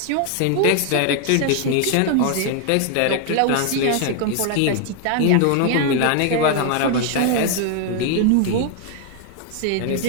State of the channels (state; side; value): different; both; correlation 0.00